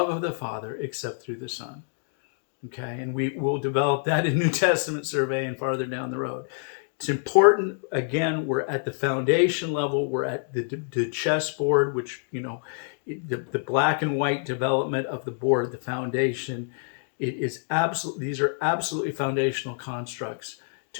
of the Father, except through the Son." Okay, and we will develop that in New Testament survey and farther down the road. It's important. Again, we're at the foundation level. We're at the chessboard, which the black and white development of the board, the foundation. It is absolutely. These are absolutely foundational constructs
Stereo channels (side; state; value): right; silent; 60 dB below the other